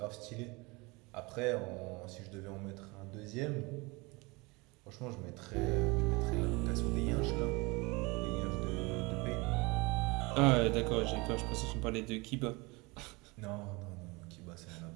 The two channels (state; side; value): quieter; left; 25.6 dB